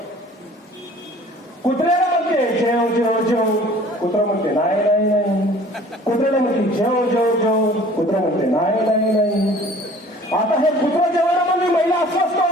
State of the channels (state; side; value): normal; both; correlation 0.50